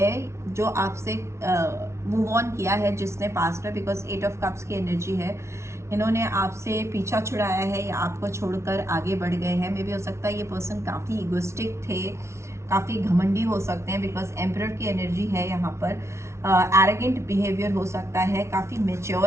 जो आपसे मूव ऑन किया है, जिसने पास्ट में, बिकॉज 8 ऑफ कप्स की एनर्जी है, इन्होंने आपसे पीछा छुड़ाया है या आपको छोड़कर आगे बढ़ गए हैं। मे भी हो सकता है ये पर्सन काफ़ी इगोस्टिक थे, काफ़ी घमंडी हो सकते हैं बिकॉज एम्परर की एनर्जी है यहाँ पर। एरोगेंट बिहेवियर हो सकता है, काफ़ी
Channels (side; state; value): left; late; 0.13 ms